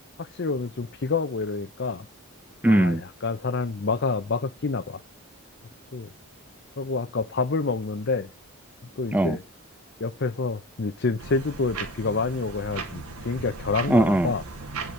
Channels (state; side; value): normal; both; correlation 0.38